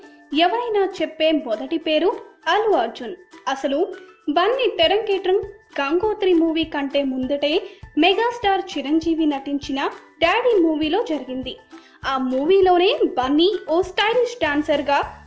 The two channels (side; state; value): both; identical; correlation 1.00